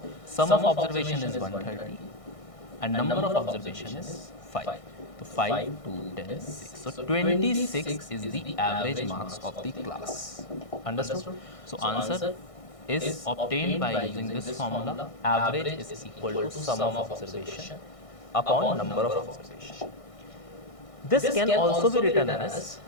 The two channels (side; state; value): right; late; 1.6 ms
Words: sum of observation is 130 and number of observation is 5. So, 5, 2, 10, 6. So, 26 is the average marks of the class. Understood? So, answer is obtained by using this formula. Average is equal to sum of observation upon number of observation. This can also be written as